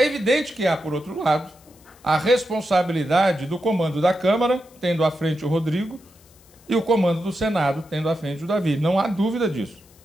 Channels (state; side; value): noise; left; hiss, 28 dB below the sound